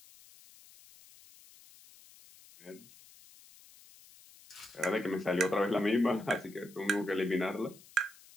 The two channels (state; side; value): noise; left; hiss, 23 dB below the sound